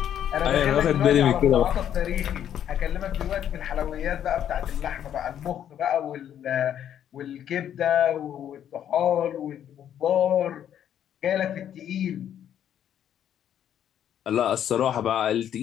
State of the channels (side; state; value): right; quieter; 10.0 dB